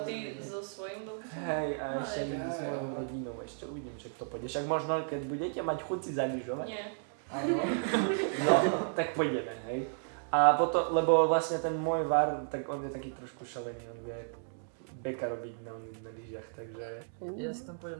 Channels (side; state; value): left; silent; digital silence